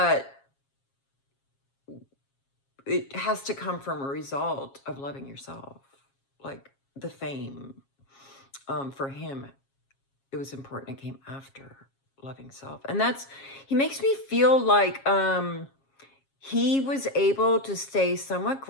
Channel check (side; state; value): right; late; 7.4 ms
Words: it has to come from a result of loving yourself. Like the fame, for him, it was important. It came after loving self. And he makes me feel like he was able to stay somewhat